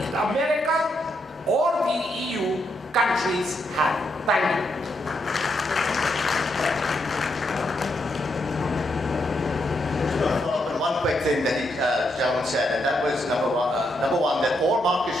America or the EU countries have. Thank you. One quick thing that Gentleman said, and that was number one, that all markets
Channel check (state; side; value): normal; both; correlation 0.79